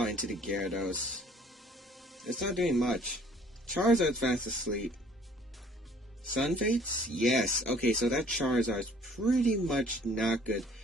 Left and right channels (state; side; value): normal; both; correlation 0.56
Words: into the Gyarados. It's not doing much. Charizard's fast asleep. Sun Fates? Yes. Okay, so that Charizard's pretty much not good.